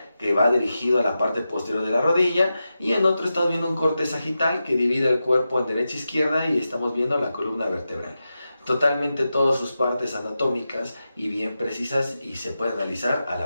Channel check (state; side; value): inverted; both; correlation -0.91